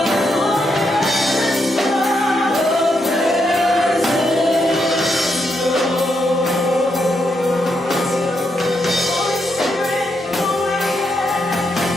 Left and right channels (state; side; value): normal; both; correlation 0.80